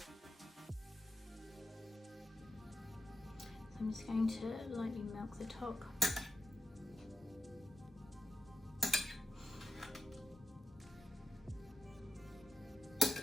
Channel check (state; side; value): normal; both; correlation 0.86